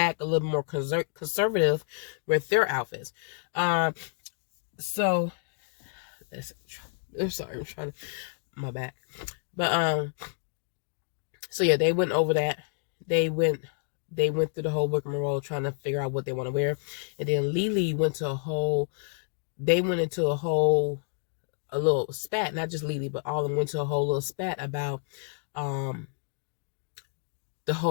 a little more conservative with their outfits. So I'm sorry, I'm trying to my back, but so yeah, they went over that. They went through the whole rigmarole trying to figure out what they want to wear, and then Lily went into a little spat, not just Lily, but all of them went to a whole little spat about the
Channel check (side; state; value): right; silent; digital silence